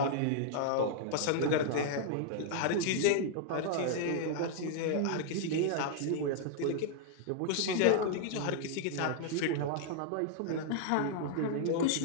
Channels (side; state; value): both; different; correlation 0.00